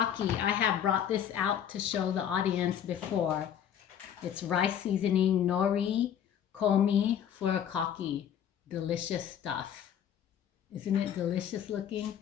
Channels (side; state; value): right; quieter; 9.3 dB